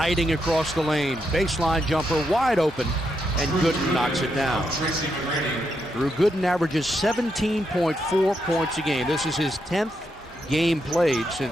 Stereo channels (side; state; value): both; normal; correlation 0.81